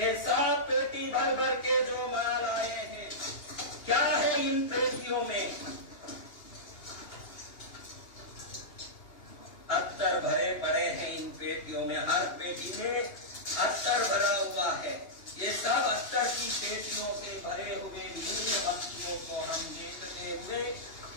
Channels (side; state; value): right; late; 2.8 ms